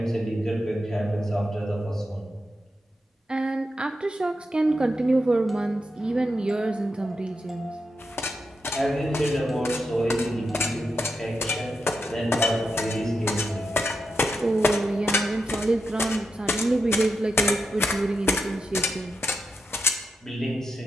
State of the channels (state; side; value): normal; both; correlation 0.87